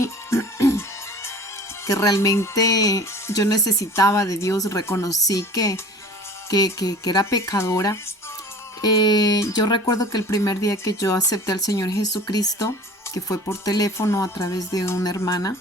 que realmente yo necesitaba de Dios, reconocí que era pecadora. Yo recuerdo que el primer día que yo acepté al Señor Jesucristo, que fue por teléfono a través de una hermana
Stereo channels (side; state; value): both; normal; correlation 0.42